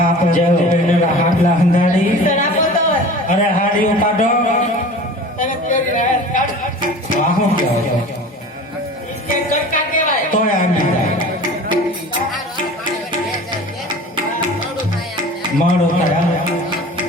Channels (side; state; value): both; normal; correlation 0.40